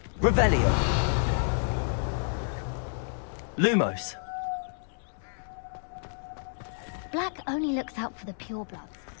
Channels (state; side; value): silent; right; digital silence